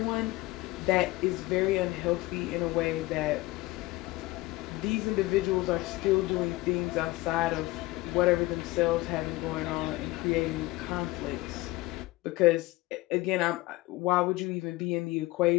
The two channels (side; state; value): right; quieter; 19.7 dB